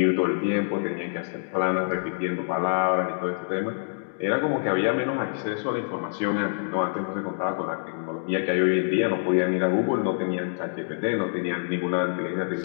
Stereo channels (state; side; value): silent; right; digital silence